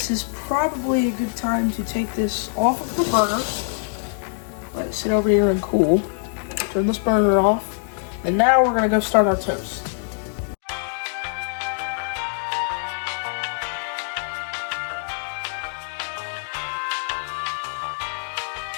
is probably a good time to take this off of the burner. Let it sit over here and cool. Turn this burner off. And now we're gonna go start our toast.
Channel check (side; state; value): right; silent; digital silence